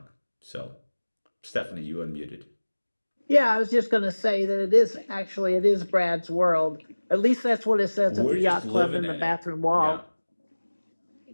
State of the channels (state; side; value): inverted; both; correlation -1.00